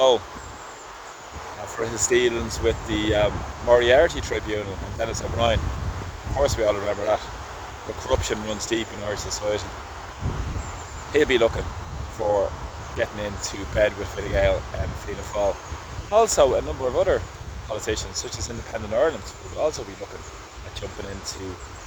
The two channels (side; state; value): both; identical; correlation 1.00